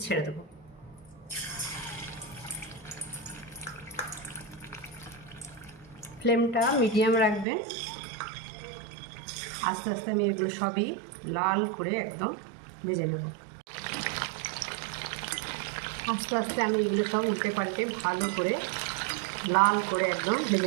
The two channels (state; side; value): drops out; left; at 7.5 s